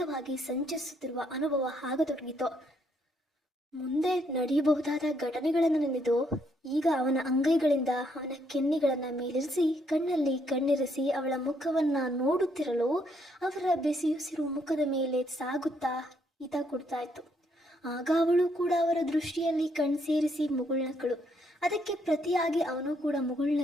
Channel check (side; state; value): both; normal; correlation 0.72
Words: ಸಂಚರಿಸುತ್ತಿರುವ ಅನುಭವ ಆಗತೊಡಗಿತು. ಮುಂದೆ ನಡೆಯಬಹುದಾದ ಘಟನೆಗಳನ್ನು ನೆನೆದು ಈಗ ಅವನ ಅಂಗೈಗಳಿಂದ ಅವನ ಕೆನ್ನೆಗಳನ್ನು ಮೇಲಿರಿಸಿ ಕಣ್ಣಲ್ಲಿ ಕಣ್ಣಿರಿಸಿ ಅವಳ ಮುಖವನ್ನ ನೋಡುತ್ತಿರಲು ಅವರ ಬೆಸಿಯುಸಿರು ಮುಖದ ಮೇಲೆ ಸಾಗುತ್ತಾ ಹಿತ ಕೊಡ್ತಾ ಇತ್ತು. ಆಗ ಅವಳು ಕೂಡ ಅವರ ದೃಷ್ಟಿಯಲ್ಲಿ ಕಣ್ಸೇರಿಸಿ ಮುಗುಳ್ನಕ್ಕಳು. ಅದಕ್ಕೆ ಪ್ರತಿಯಾಗಿ ಅವನು ಕೂಡ